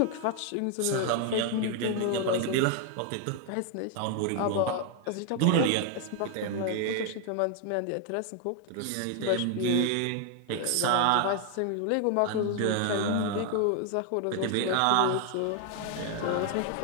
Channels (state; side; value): different; both; correlation 0.00